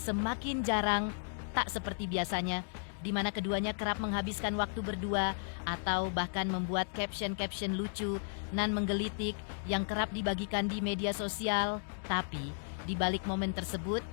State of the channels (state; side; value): silent; right; digital silence